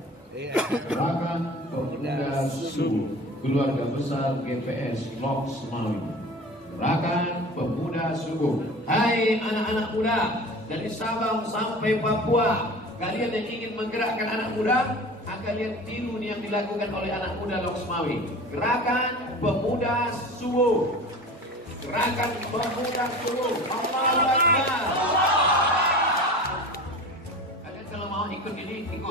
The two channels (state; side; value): normal; both; correlation 0.37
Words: Gerakan Pemuda Subuh Keluarga Besar GPS Lok Semawi. Gerakan Pemuda Subuh. Hai anak-anak muda dari Sabang sampai Papua, kalian yang ingin menggerakkan anak muda, akan lihat tiru yang dilakukan oleh anak muda Lok Semawi. Gerakan Pemuda Subuh. Gerakan Pemuda Subuh. Allahu Akbar. Kalian kalau mau ikut ini,